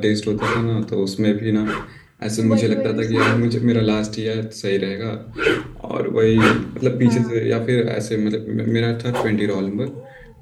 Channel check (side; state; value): both; identical; correlation 1.00